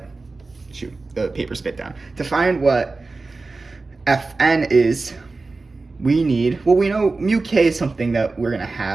the paper spit down. To find what Fn is, we need, well, we know mu k is something that we're gonna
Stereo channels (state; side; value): quieter; left; 3.7 dB